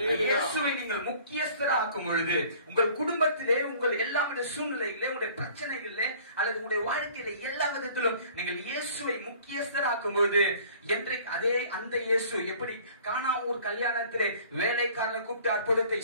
இயேசுவை நீங்கள் முக்கியஸ்தராக்கும் பொழுது உங்கள் குடும்பத்திலே, உங்கள் எல்லா சூழ்நிலைகளிலே, உங்களுடைய பிரச்சனைகளிலே அல்லது உங்களுடைய வாழ்க்கையில எல்லா விதத்திலும் நீங்கள் இயேசுவை முக்கியஸ்தராக்கும் பொழுது என்றைக்கு அதே அந்த இயேசு எப்படி கானாவூர் கல்யாணத்திலே வேலைக்காரனை கூப்பிட்டு அற்புதத்தை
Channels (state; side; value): inverted; both; correlation -0.51